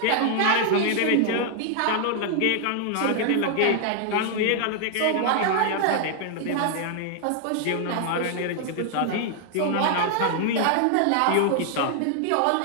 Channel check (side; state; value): both; different; correlation 0.00